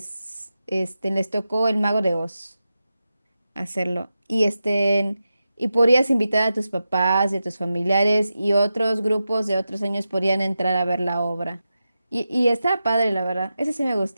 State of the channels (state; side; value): inverted; both; correlation -0.91